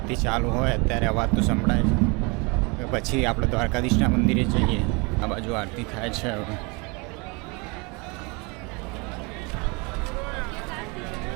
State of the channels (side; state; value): left; quieter; 29.2 dB